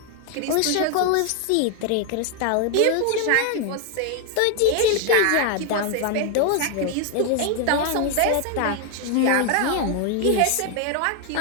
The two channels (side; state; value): both; different; correlation 0.01